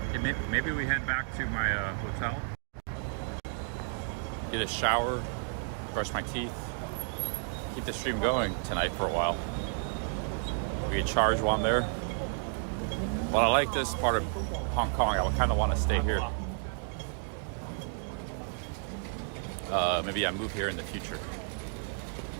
Okay, maybe we head back to my hotel. Get a shower, brush my teeth, keep the stream going tonight for a while. We can charge while I'm there. Well, I like this part of Hong Kong. I would kind of want to stay here. Maybe I move here in the future.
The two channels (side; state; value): left; silent; 57 dB below the other